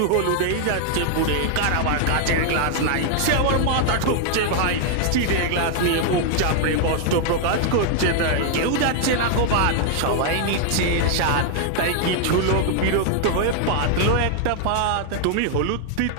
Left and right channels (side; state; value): both; different; correlation 0.00